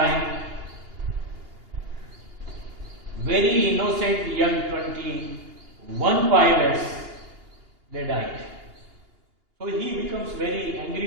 very innocent young 21 pilots, they died. So he becomes very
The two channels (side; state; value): left; late; 2.8 ms